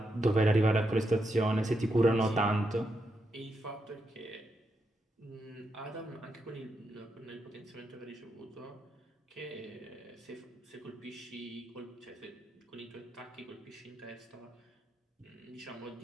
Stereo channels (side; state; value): both; normal; correlation 0.83